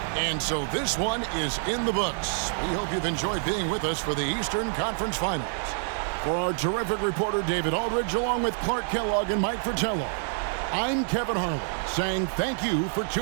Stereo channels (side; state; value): left; silent; 60 dB below the other